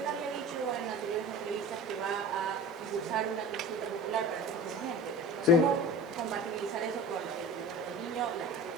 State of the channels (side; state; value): both; normal; correlation 0.36